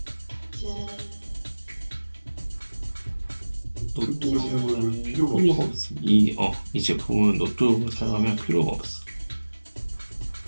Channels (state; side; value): inverted; both; correlation -1.00